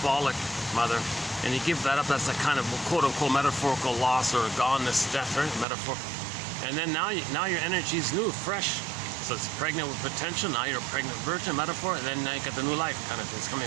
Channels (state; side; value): drops out; left; at 5.7 s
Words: mother, and you give that up, that's a kind of quote-unquote metaphorical loss or goneness, death, right? Metaphor. And then now your energy is new, fresh. So it's pregnant with potential. Now you're a pregnant virgin, metaphor, and then now you got the new life kind of thing. It's